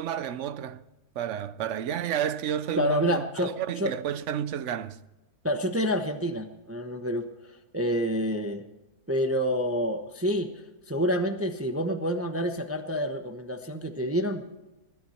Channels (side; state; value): both; normal; correlation 0.05